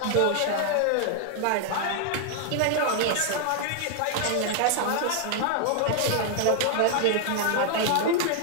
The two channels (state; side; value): different; both; correlation 0.00